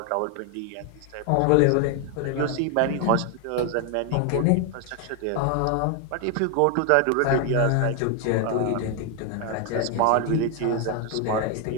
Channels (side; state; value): both; different; correlation 0.01